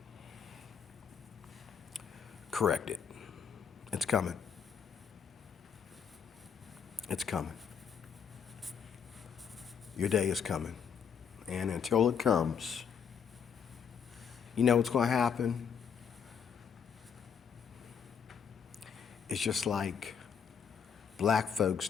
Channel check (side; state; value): right; quieter; 7.2 dB